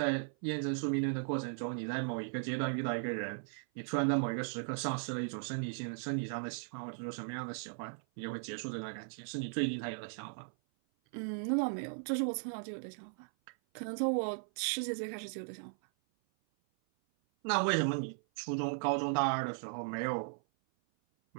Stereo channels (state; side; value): silent; left; 53 dB below the other